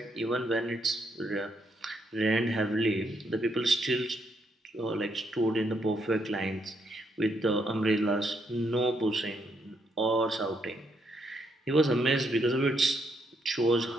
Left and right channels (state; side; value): normal; both; correlation 0.75